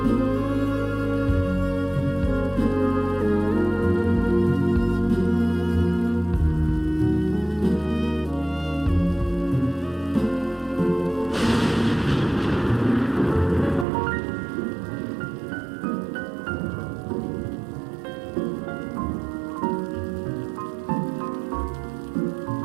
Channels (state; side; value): drops out; left; at 13.9 s